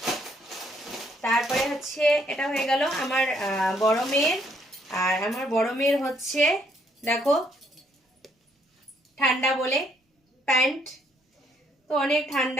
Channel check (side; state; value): both; normal; correlation 0.69